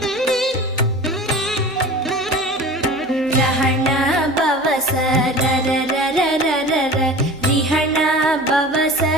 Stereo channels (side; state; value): both; normal; correlation 0.37